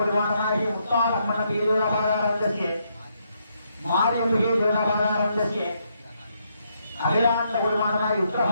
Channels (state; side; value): inverted; both; correlation -0.76